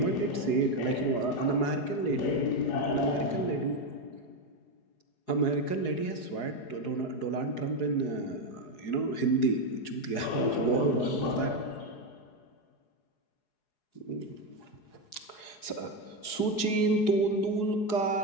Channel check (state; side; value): late; right; 4.8 ms